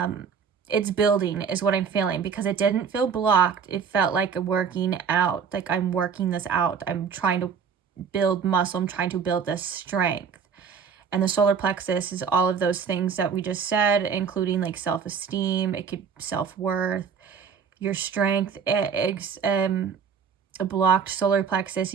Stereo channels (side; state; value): left; quieter; 6.5 dB